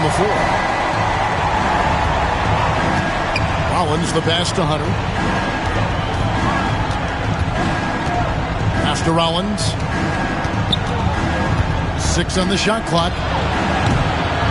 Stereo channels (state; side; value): identical; both; correlation 1.00